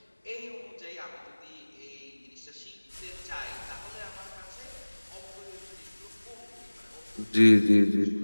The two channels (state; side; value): inverted; both; correlation -1.00